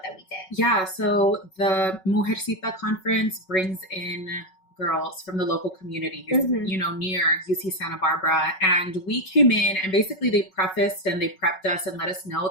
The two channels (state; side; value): late; right; 5.4 ms